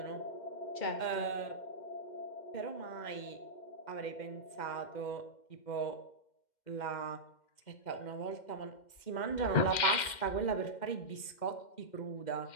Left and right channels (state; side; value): late; right; 2.1 ms